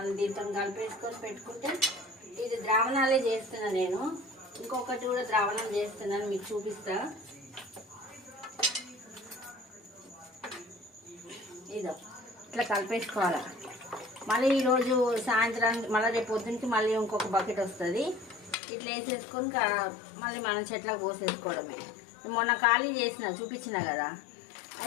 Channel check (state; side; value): drops out; right; at 18.6 s